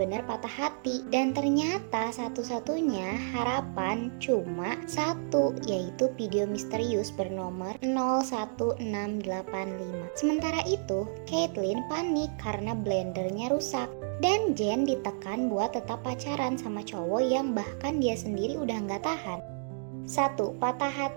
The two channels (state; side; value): silent; left; digital silence